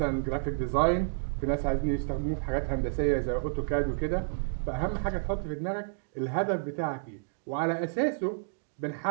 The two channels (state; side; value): silent; left; digital silence